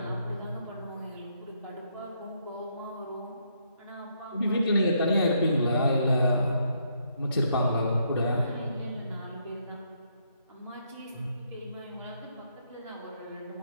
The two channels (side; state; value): both; inverted; correlation -0.74